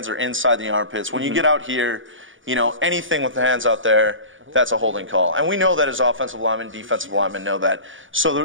are inside the armpits. When you get out here, anything with the hands out there, that's a holding call. And we know that as offensive linemen, defensive linemen know that.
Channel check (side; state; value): left; late; 0.57 ms